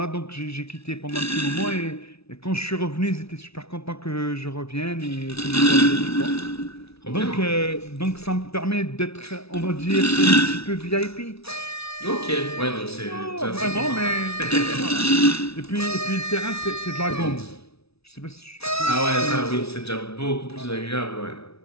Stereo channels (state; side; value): late; right; 0.78 ms